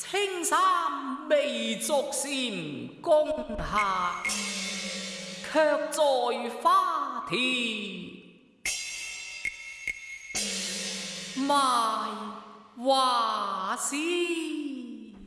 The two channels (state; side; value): identical; both; correlation 1.00